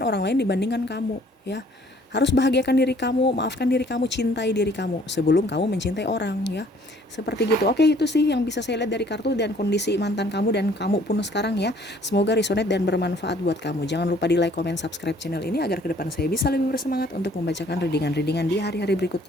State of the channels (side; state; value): both; normal; correlation 0.59